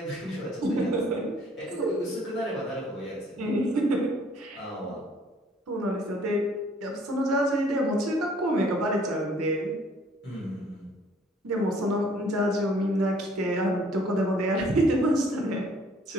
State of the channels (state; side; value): normal; both; correlation 0.59